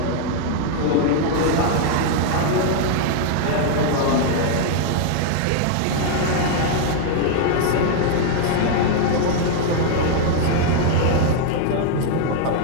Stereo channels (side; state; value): both; different; correlation 0.00